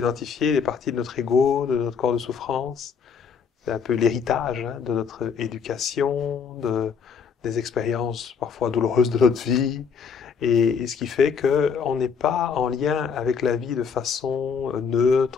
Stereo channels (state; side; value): quieter; right; 6.2 dB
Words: des parties de notre ego, de notre corps de souffrance. C'est un peu l'héritage de notre éducation, des expériences parfois douloureuses de notre vie, et ce qui fait que on n'est pas en lien avec la vie de façon